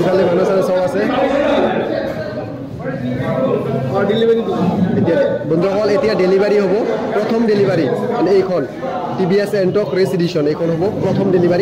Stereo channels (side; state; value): both; identical; correlation 1.00